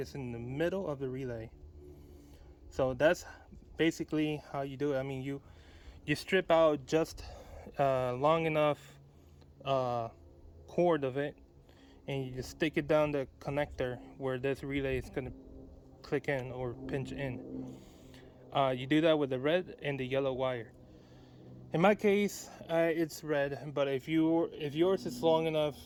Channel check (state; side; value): identical; both; correlation 1.00